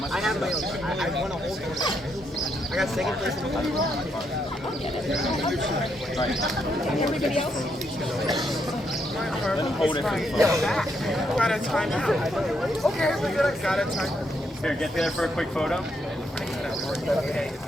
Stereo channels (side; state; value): both; normal; correlation 0.77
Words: I have my own. I want to hold it. I got second place in the final. Everybody else? Hold it for the photo. Got a timeout. Okay, we're good. Got a timeout. Here, get there for a quick photo.